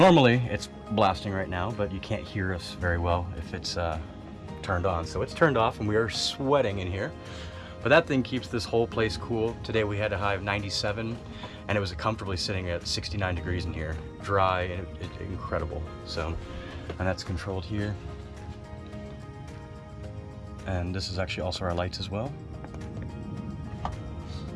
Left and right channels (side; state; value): both; identical; correlation 1.00